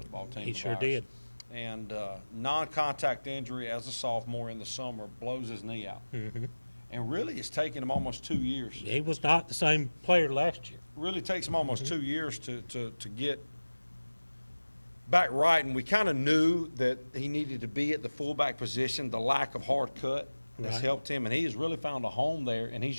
team. He of sure ours. did. And non-contact injury as a sophomore in the summer, blows his knee out. Mm-hmm. And really, it's taken him almost 2 years. He was not the same player last year. Really takes him almost 2 years to get back right. And we kind of knew that he needed to be at the fullback position. The lack of hard cut has helped him, and he has really found a home there. And he's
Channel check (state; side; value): inverted; both; correlation -1.00